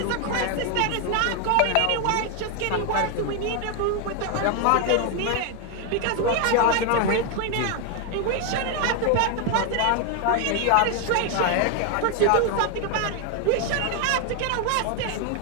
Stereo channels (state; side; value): different; both; correlation 0.01